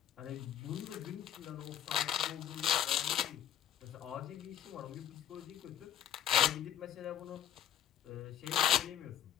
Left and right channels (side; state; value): right; quieter; 10.2 dB